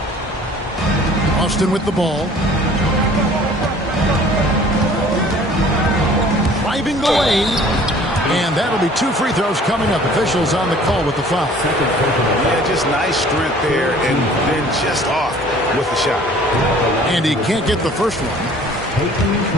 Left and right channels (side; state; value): both; normal; correlation 0.51